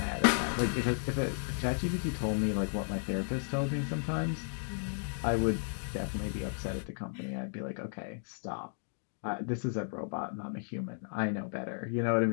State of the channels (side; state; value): right; silent; digital silence